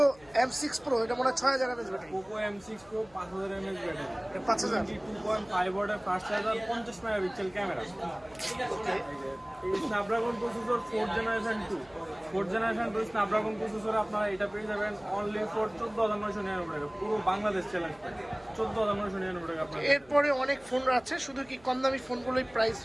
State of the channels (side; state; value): left; noise; hum, 27 dB below the sound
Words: M6 Pro, এটা মনে হয় 6000 mAh battery. Poco M6 Pro 5000 mAh battery, 5000। 22.5 ওয়াটের ফাস্ট চার্জার, 50 মেগাপিক্সেল ক্যামেরা। ওকে, এই Snapdragon processor 4th generation 2 Snapdragon processor আপনারা এটা পেয়ে যাবেন অনলি ফর 14999 টাকা, পুরো বাংলাদেশ চ্যালেঞ্জ 14999 টাকা আপনারা। এরপরে অনেক ফোন আছে, শুধু কি কম দামি ফোনগুলোই প্রাইস